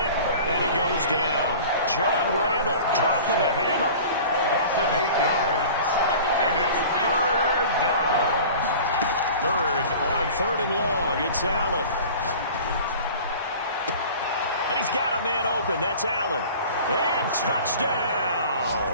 and he goes down. John Randall dropping the hammer. A loss of 8 yards. And it's 3rd down. 3rd on 3rd and long. It's Allen. And he's got a man open. That's Allen. And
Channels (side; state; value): both; inverted; correlation -0.41